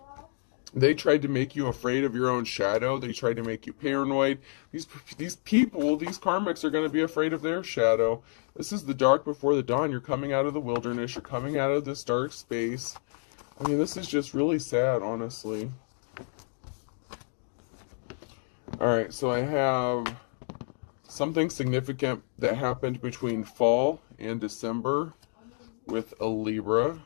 They tried to make you afraid of your own shadow. They tried to make you paranoid. These people, these karmics are going to be afraid of their shadow. This is the dark before the dawn. You're coming out of the wilderness. You're coming out of this dark space. I mean, this is just really sad, honestly. Alright, so I have something significant that happened between fall and December with a Libra.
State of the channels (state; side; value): silent; right; 58 dB below the other